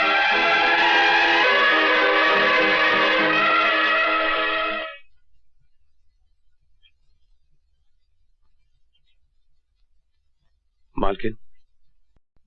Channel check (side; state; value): both; identical; correlation 1.00